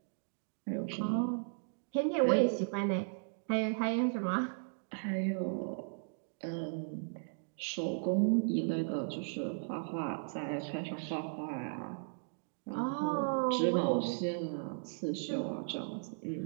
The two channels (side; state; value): left; silent; digital silence